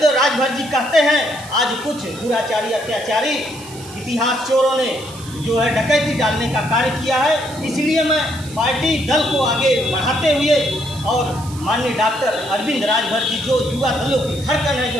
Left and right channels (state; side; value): noise; right; hiss, 17 dB below the sound